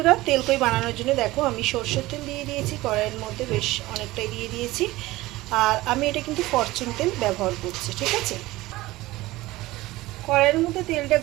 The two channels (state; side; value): quieter; left; 18.6 dB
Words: তেলকই বানানোর জন্য দেখো আমি সর্ষের তেল দিয়ে দিয়েছি কড়াইয়ের মধ্যে, বেশ অনেকটাই দিয়ে দিয়েছি। আর আমি এটা কিন্তু ফরচুন তেল ব্যবহার করছি। ঠিক আছে, কড়াইয়ের মধ্যে তেলটা